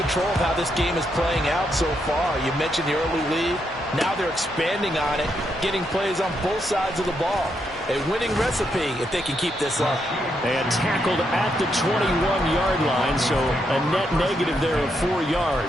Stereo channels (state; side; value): normal; both; correlation 0.79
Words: of how this game is playing out so far. You mentioned the early lead. Now they're expanding on it, getting plays on both sides of the ball. A winning recipe if they can keep this up. And tackled at the 21-yard line, so a net negative there of 4